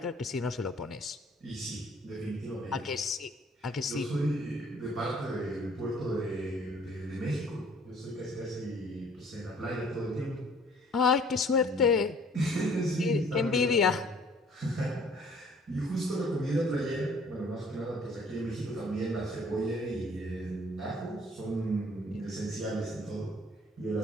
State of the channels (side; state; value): both; normal; correlation 0.56